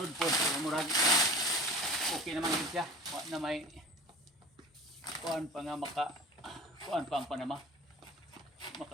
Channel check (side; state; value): both; normal; correlation 0.40